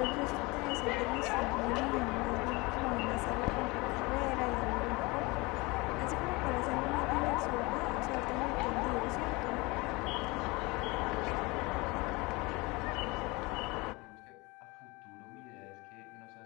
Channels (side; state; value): right; quieter; 24.5 dB